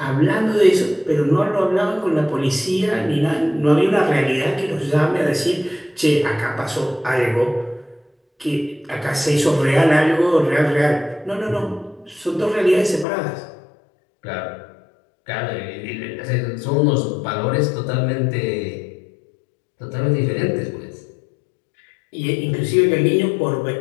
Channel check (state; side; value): drops out; right; at 13.1 s